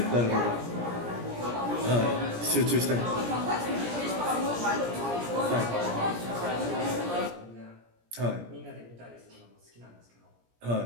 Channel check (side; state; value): left; late; 17 ms